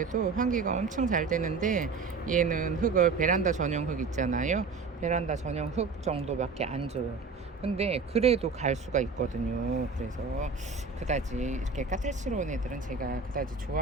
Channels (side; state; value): left; quieter; 4.6 dB